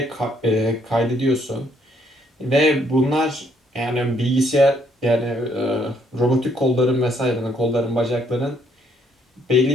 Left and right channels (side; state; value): both; normal; correlation 0.68